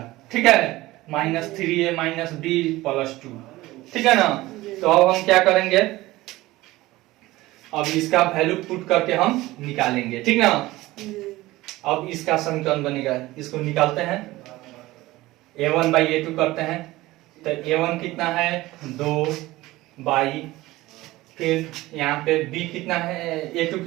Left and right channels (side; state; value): left; quieter; 18.3 dB